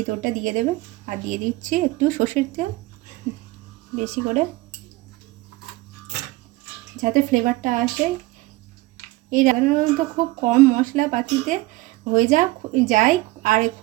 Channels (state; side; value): quieter; left; 20.1 dB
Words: দিয়ে দেবেন। আর দিয়ে দিচ্ছি একটু সর্ষের তেল বেশি করে, যাতে ফ্লেভারটা আসে। এই রান্নাটা খুব কম মশলাপাতিতে হয়ে যায় আর